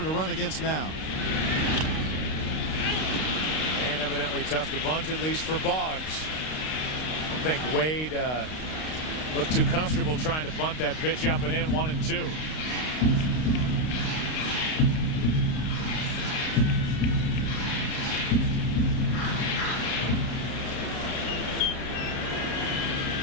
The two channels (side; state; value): right; late; 32 ms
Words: to run against now. And evidently tough to bunt, at least for Boggs. I don't think Wade looked too comfortable trying to bunt that pitch up and in. 1-2.